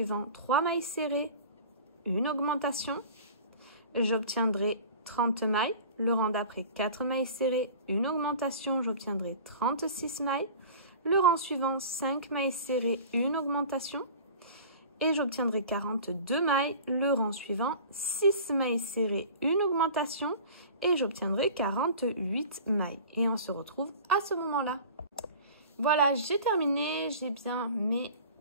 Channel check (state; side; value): inverted; both; correlation -0.40